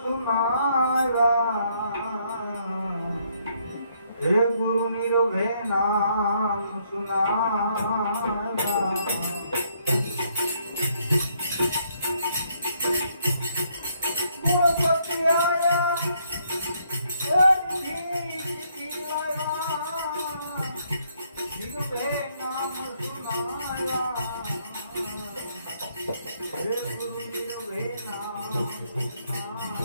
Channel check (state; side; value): inverted; both; correlation -0.71